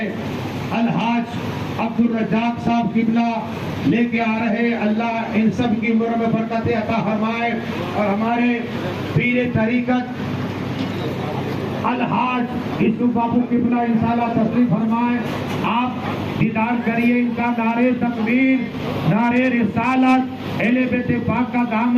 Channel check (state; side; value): identical; both; correlation 1.00